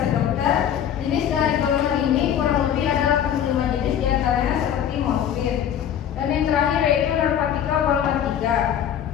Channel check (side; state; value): right; quieter; 9.5 dB